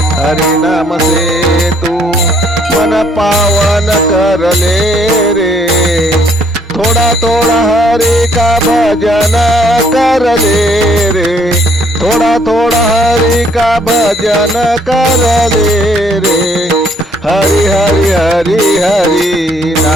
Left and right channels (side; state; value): both; normal; correlation 0.65